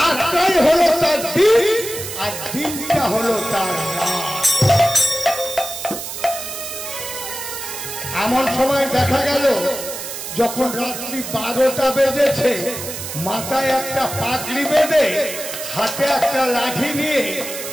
হলো তার দিন আর দিনটা হলো তার রাত। এমন সময় দেখা গেল যখন রাত্রি 12টা বেজেছে, মাথায় একটা পাগড়ি বেঁধে হাতে একটা লাঠি নিয়ে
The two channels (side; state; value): right; noise; hiss, 8 dB below the sound